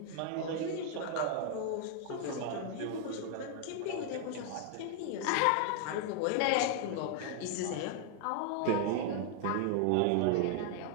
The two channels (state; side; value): different; both; correlation 0.00